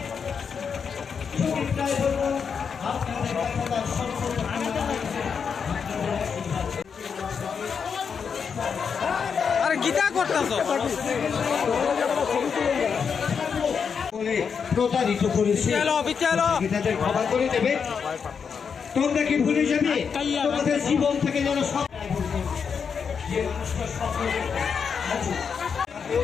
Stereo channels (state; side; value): quieter; right; 6.4 dB